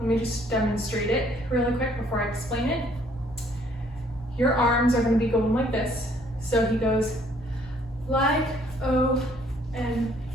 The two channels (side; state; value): both; normal; correlation 0.63